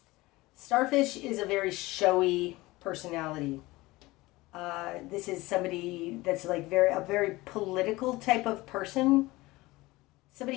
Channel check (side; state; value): right; quieter; 20.3 dB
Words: Starfish is a very showy personality. This is somebody that's like a very political type of person.